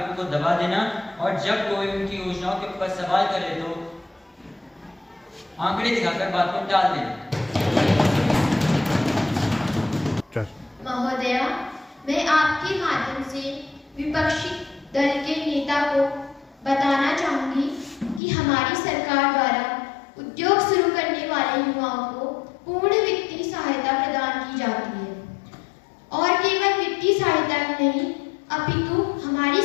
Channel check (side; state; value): right; drops out; at 18.2 s